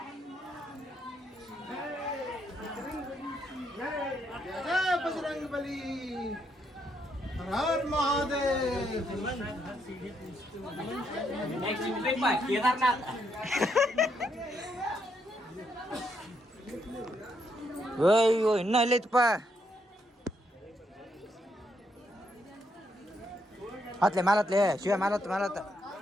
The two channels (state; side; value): normal; both; correlation 0.76